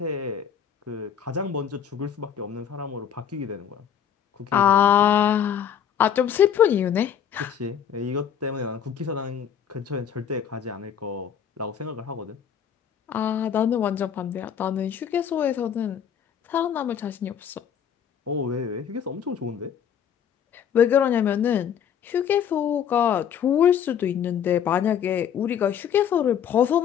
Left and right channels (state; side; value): quieter; right; 8.7 dB